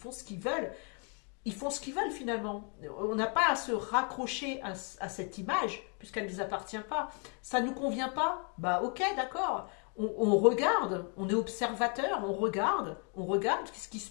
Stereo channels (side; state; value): right; quieter; 38.1 dB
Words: ce qu'ils veulent. Ils font ce qu'ils veulent finalement. On n'a pas à se raccrocher à cette image, puisqu'elle ne nous appartient pas. Ça ne nous convient pas? Bah ok, d'accord. On regarde, on est observateur, on regarde ce qui se